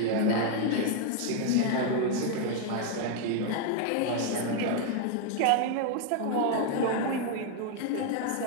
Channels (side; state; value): both; different; correlation 0.00